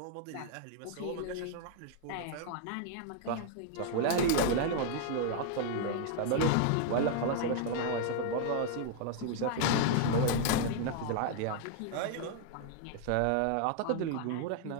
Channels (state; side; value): different; both; correlation 0.00